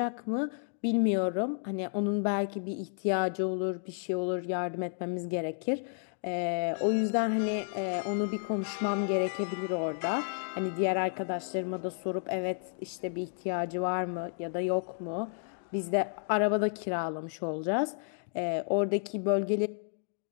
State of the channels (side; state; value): right; silent; digital silence